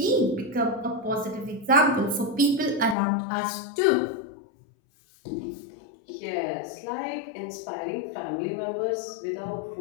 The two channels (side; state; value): right; drops out; at 3.0 s